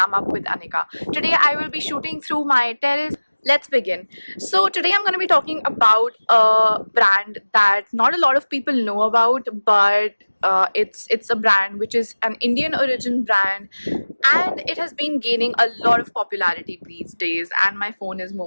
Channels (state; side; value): inverted; both; correlation -1.00